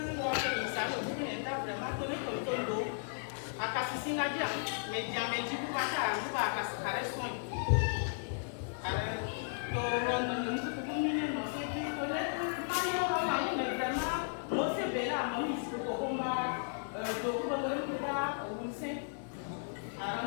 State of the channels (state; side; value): silent; right; digital silence